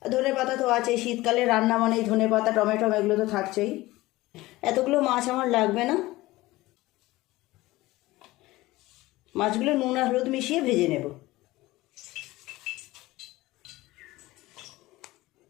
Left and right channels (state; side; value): quieter; right; 18.7 dB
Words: ধনে পাতা তো আছে, শীতকালে রান্না মানেই ধনে পাতা টমেটো এগুলো তো থাকছেই। এতগুলো মাছ আমার লাগবে না। মাছগুলো নুন আর হলুদ মিশিয়ে ভেজে নেব।